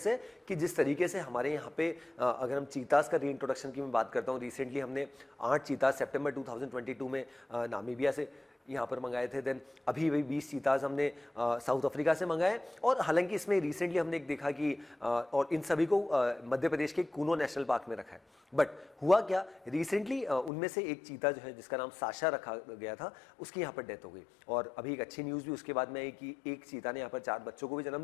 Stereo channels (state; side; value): drops out; right; at 20.5 s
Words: है कि जिस तरीके से हमारे यहाँ पे अगर हम चीतास का रीइंट्रोडक्शन की मैं बात करता हूँ, रिसेंटली हमने 8 चीतास सितंबर 2022 में नामीबिया से यहाँ पर मंगाए थे। देन अभी भी 20 चीताज हमने साउथ अफ्रीका से मंगाए, और हालांकि इसमें रिसेंटली हमने एक देखा कि और इन सभी को मध्य प्रदेश के कूनो नेशनल पार्क में रखा है। बट हुआ क्या, रिसेंटली उनमें से एक चीता जो है जिसका नाम साशा रखा गया था, उसकी यहाँ पर डेथ हो गई। और अभी एक अच्छी न्यूज़ भी उसके बाद में आई कि एक चीता ने यहाँ पर 4 बच्चों को भी जन्म